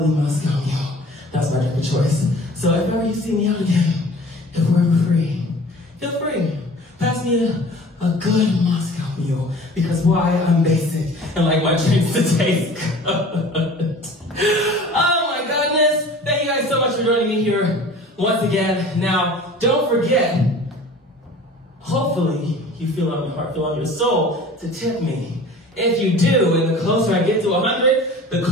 Moscow Mule. That's my drink of choice. So if ever you see me out again, if we're ever free, feel free. Pass me a good Moscow Mule. Because why? I'm basic and like my drinks to taste good. Oh my goodness. Thank you guys so much for joining me here once again. Now, don't forget, hopefully you feel on your heart, feel on your soul to tip me If you do, and the closer I get to 100, the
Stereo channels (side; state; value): both; normal; correlation 0.44